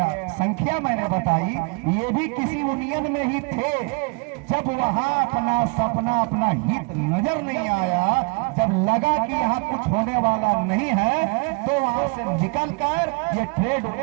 संख्या मैंने बताई, ये भी किसी यूनियन में ही थे। जब वहां अपना सपना, अपना हित नजर नहीं आया, जब लगा कि यहाँ कुछ होने वाला नहीं है, तो वहां से निकलकर ये ट्रेड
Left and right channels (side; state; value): left; quieter; 32.2 dB